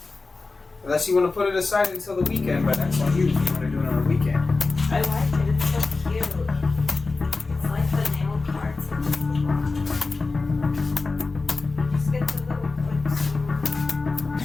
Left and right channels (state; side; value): quieter; right; 3.8 dB